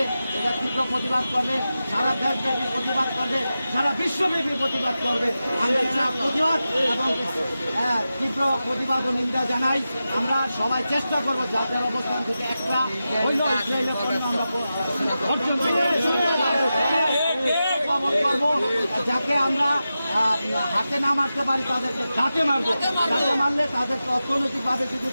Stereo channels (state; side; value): inverted; both; correlation -0.92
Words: এটা তীব্র প্রতিবাদ করবে, সারা দেশব্যাপী প্রতিবাদ করবে, সারা বিশ্বব্যাপী প্রতিবাদ করবে। আমরা এটা প্রতিবাদ এবং তীব্র প্রতিবাদ ও নিন্দা জানাই। আমরা সবাই চেষ্টা করবো যাদের অবস্থান থেকে একটা হইল ইসরায়েলের পণ্য আমরা বর্জন করবো, যাকে আমরা হাতে না মারতে পারি তাদেরকে ঘাটে মারবো। ঘাটে মারলে তাদেরকে অর্থনৈতিকভাবে যদি